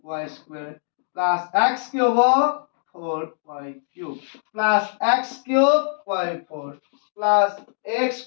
y স্কয়ার প্লাস x কি হ'ব 4y cube plus x cube y4 plus x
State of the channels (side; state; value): right; silent; digital silence